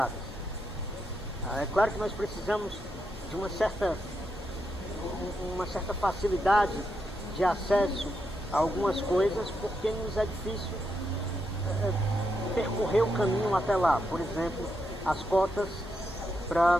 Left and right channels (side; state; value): both; normal; correlation 0.82